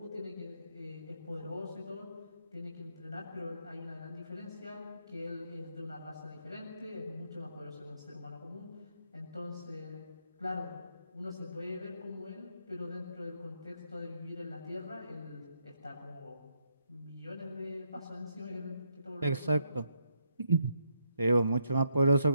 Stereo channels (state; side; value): inverted; both; correlation -0.77